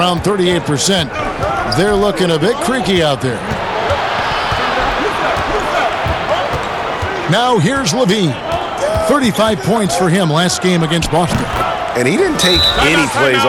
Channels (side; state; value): both; identical; correlation 1.00